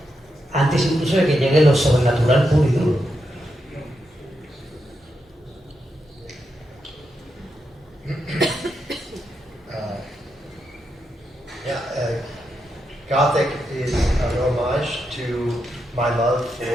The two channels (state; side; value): normal; both; correlation 0.84